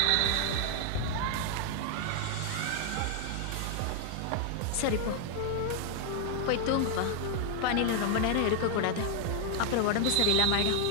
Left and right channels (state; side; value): different; both; correlation 0.00